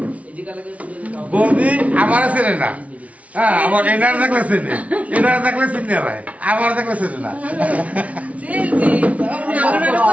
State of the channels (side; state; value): left; late; 0.066 ms